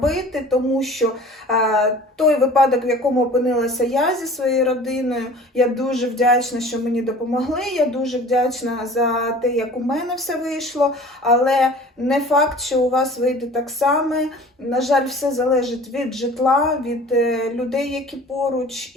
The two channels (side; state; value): both; normal; correlation 0.45